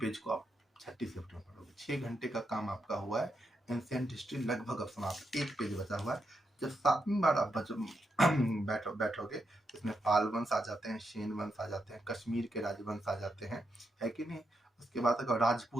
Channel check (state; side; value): normal; both; correlation 0.83